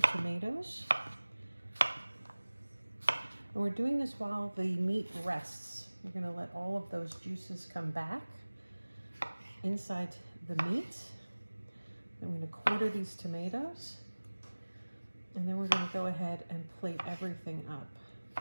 tomatoes. And we're doing this while the meat rests. We're going to let all of those juices come back inside the meat. I'm going to quarter these tomatoes. And then we're going to go ahead and plate everything up.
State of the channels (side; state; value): both; inverted; correlation -1.00